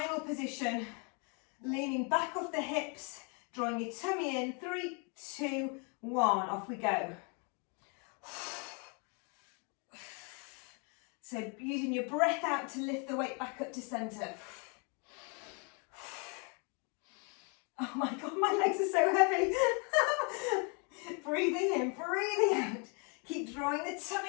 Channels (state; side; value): quieter; right; 35.8 dB